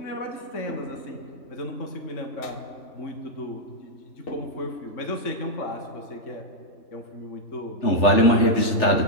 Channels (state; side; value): late; right; 3.4 ms